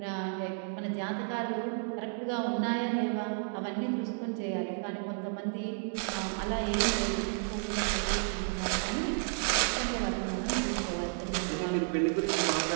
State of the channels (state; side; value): silent; left; 56 dB below the other